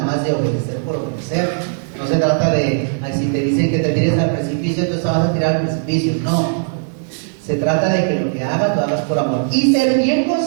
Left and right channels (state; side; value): silent; left; digital silence